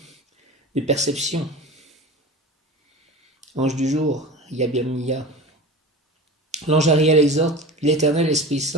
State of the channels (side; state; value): both; normal; correlation 0.33